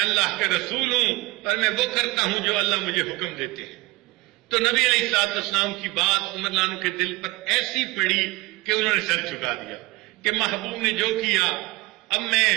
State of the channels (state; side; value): quieter; left; 22.8 dB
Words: کا رسول ہوں اور میں وہ کرتا ہوں جو اللہ مجھے حکم دیتے ہیں۔ تو نبی علیہ السلام کی بات عمر عنہ کے دل پر ایسی پڑی کہ انہوں نے سر جھکا دیا کہ محبوب نے جو کیا اب میں